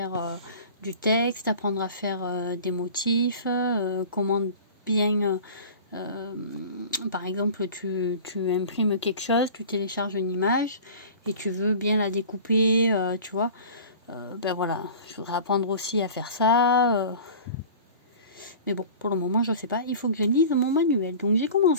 du texte, apprendre à faire des motifs, comment bien, par exemple, tu imprimes quelque chose, tu télécharges une image et tu veux bien la découper, tu vois. Voilà, je voudrais apprendre aussi à faire ça. Mais bon, pour le moment, je ne sais pas. Il faut que je lise mon manuel. Donc j'ai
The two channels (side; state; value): both; inverted; correlation -0.40